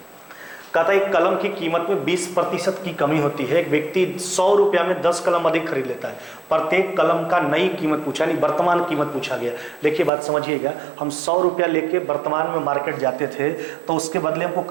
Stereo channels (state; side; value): drops out; left; at 10.1 s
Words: कहता है एक कलम की कीमत में 20% की कमी होती है, एक व्यक्ति 100 रुपया में 10 कलम अधिक खरीद लेता है, प्रत्येक कलम का नई कीमत पूछा, नहीं वर्तमान कीमत पूछा गया। देखिए बात समझिएगा, हम 100 रुपया लेके वर्तमान में मार्केट जाते थे तो उसके बदले हमको